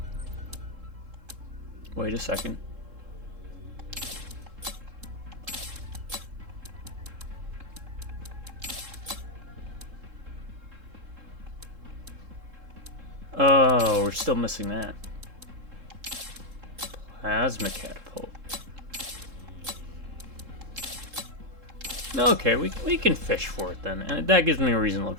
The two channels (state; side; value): late; left; 3.7 ms